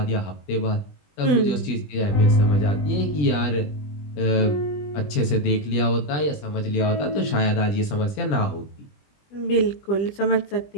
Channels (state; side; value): late; right; 20 ms